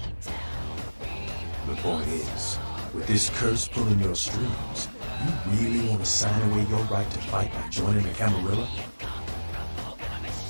The point is, with this curse pulling your strings, you really want to sign away your right to fight by joining the Camarilla?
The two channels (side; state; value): both; inverted; correlation -1.00